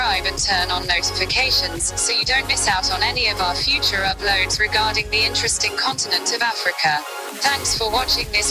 and turn on notifications so you don't miss out on any of our future uploads regarding the interesting continent of Africa. Thanks for watching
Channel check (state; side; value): identical; both; correlation 1.00